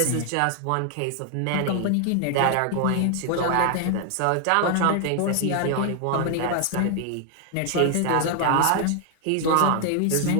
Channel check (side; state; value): both; different; correlation 0.00